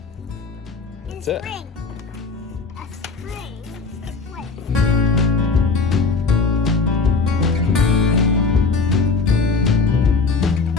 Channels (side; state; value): right; quieter; 4.6 dB